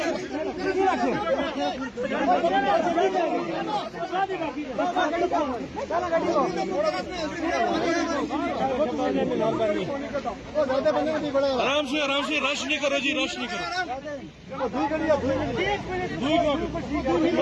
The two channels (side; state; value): both; identical; correlation 1.00